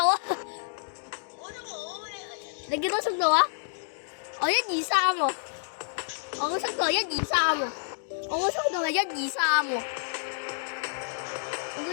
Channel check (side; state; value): right; silent; digital silence